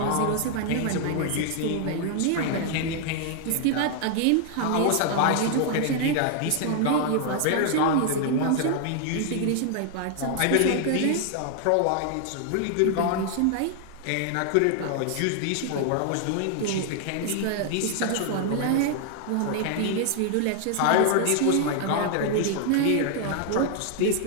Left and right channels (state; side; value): different; both; correlation 0.00